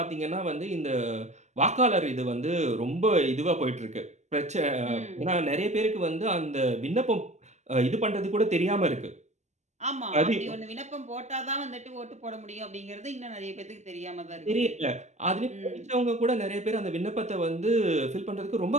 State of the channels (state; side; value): late; left; 0.33 ms